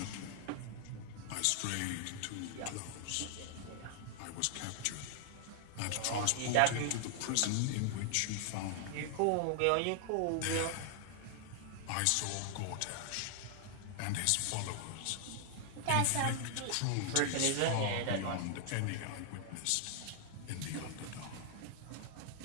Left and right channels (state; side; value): different; both; correlation 0.00